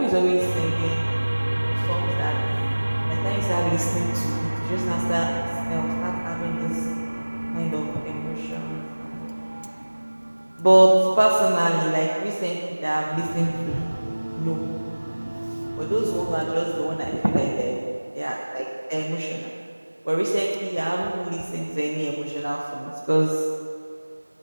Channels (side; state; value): both; inverted; correlation -1.00